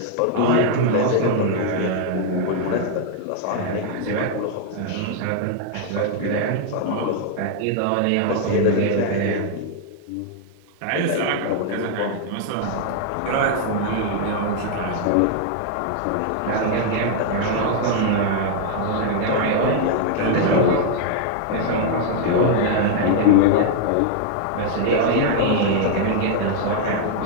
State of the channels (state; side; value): different; both; correlation 0.00